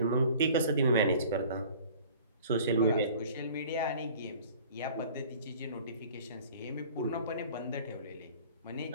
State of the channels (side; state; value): both; inverted; correlation -0.47